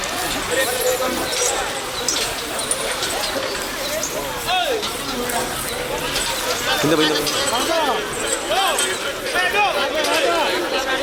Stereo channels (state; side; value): identical; both; correlation 1.00